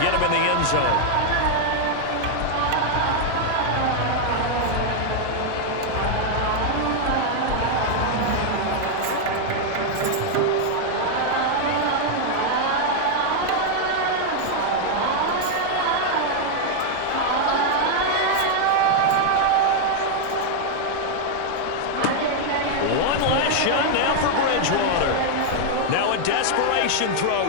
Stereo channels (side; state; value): both; different; correlation 0.00